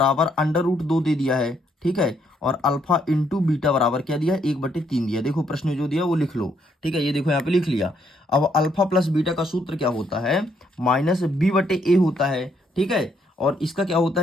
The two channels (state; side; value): normal; both; correlation 0.72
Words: √2 दे दिया है। ठीक है, और अल्फा इंटू बीटा बराबर क्या दिया है, 1/3 दिया। देखो प्रश्न जो दिया वो लिख लो। ठीक है, ये देखो यहाँ पे लिख लिया। अब अल्फा प्लस बीटा का सूत्र क्या होता है, -b/a होता है। ठीक है, और इसका क्या होता